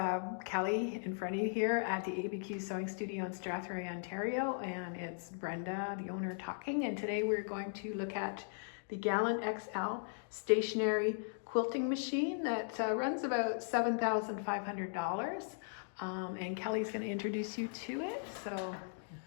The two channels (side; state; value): right; silent; digital silence